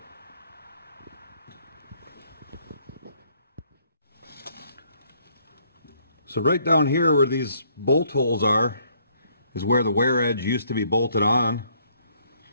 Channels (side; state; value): both; inverted; correlation -0.67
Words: So right down here where these bolt holes are is where the wear edge used to be bolted on.